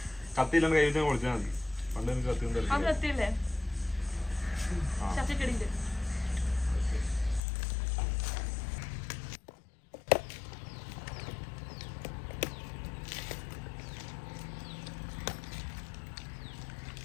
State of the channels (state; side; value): drops out; right; at 7.4 s